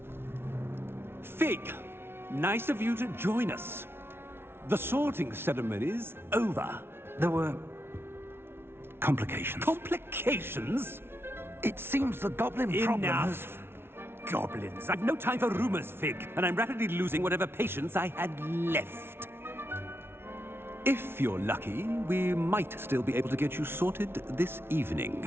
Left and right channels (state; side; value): late; left; 0.12 ms